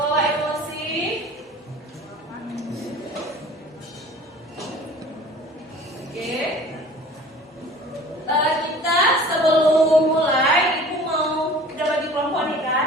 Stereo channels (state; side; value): normal; both; correlation 0.45